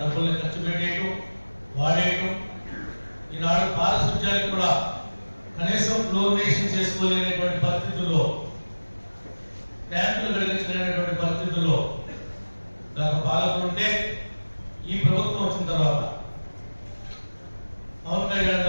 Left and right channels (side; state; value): both; inverted; correlation -1.00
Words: డబ్బుల్ని ఖర్చు పెట్టేయటం, వాడేయటం. ఈనాడు పారిశుధ్యానికి కూడా కనీసం ఫ్లోరినేషన్ చేసుకోలేనటువంటి పరిస్థితుల్లో, ట్యాంకులు కలిగించలేనటువంటి పరిస్థితుల్లో గత పాలకులు ఉంటే, ఈ ప్రభుత్వం వచ్చిన తర్వాత పవన్ కళ్యాణ్